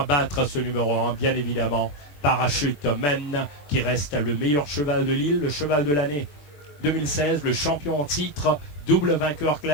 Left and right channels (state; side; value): late; right; 21 ms